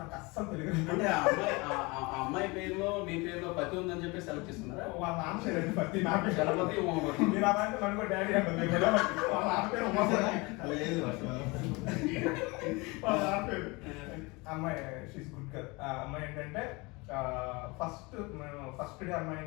అస్సలు తెలుగు అంటే అమ్మాయి పేరులో మీ పేరులో పతి ఉందని చెప్పి సెలెక్ట్ చేస్తున్నారా? వాళ్ళ నాన్న పేరు పతి, నా పేరు గణపతి ఉమాపతి. మీరు అలాంటి నన్ను డాడీ అంటుంది. వాళ్ళ నాన్న పేరు ఉమాపతి. వాళ్ళ నాన్న పేరు అమ్మాయి షీస్ గుడ్ గర్ల్. అమ్మాయి ఏంటంటే ఫస్ట్ డే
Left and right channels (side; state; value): right; quieter; 25.7 dB